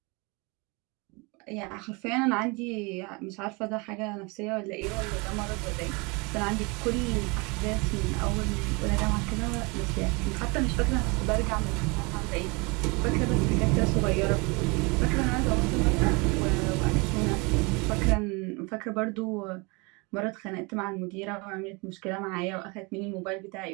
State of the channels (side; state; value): left; quieter; 28.5 dB